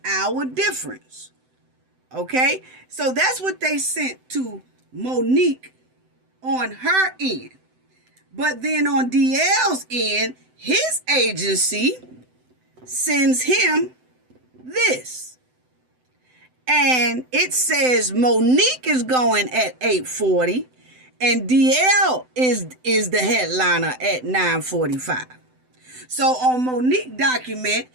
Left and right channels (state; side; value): late; left; 7.9 ms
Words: hour difference. Okay? So that's what they sent to Monique on her end. But then on DL's end, his agency sends him this. And it says Monique is going at 8:40 and DL is the headliner at 9:45. So on Monique document,